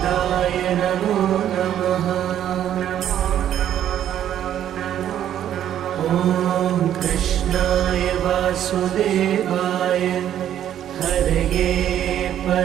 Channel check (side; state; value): left; quieter; 10.7 dB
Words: नमो नमः। ॐ कृष्णाय वासुदेवाय हरये